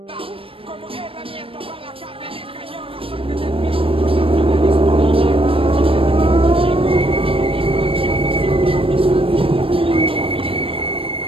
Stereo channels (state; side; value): late; left; 0.27 ms